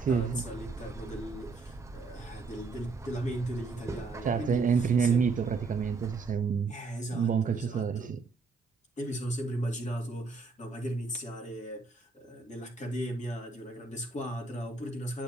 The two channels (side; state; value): left; quieter; 4.3 dB